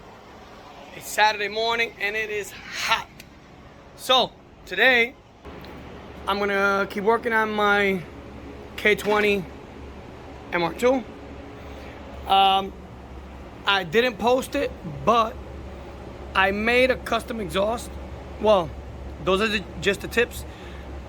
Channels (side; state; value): both; identical; correlation 1.00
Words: It's Saturday morning and it is hot. So today I'm gonna keep working on my k20 mr2. I didn't post it, but I made a custom exhaust. Well, those are just the tips.